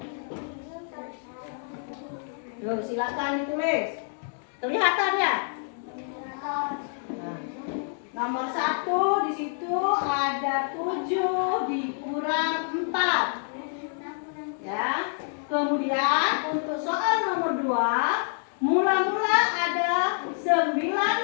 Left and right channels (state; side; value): silent; right; 60 dB below the other